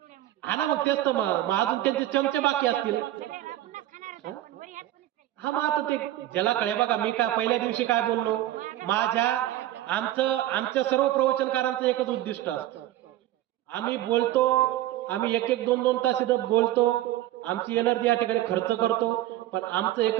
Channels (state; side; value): quieter; left; 14.3 dB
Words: हा ना, मग तेच तर, मग अजून त्यांचे चमचे बाकी असतील. हा, मग आता ते ज्याला कळे. बघा मी काय पहिल्या दिवशी काय बोललो, आमच्या सर्व प्रवचनकारांचं एकच उद्दिष्ट असतं, आम्ही बोलतो, आम्ही 1-2 तास इथं बोलतो, आमची एनर्जी या ठिकाणी खर्च करतो, पण आमचं